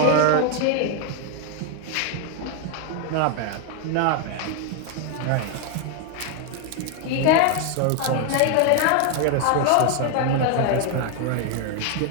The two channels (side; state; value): both; different; correlation 0.01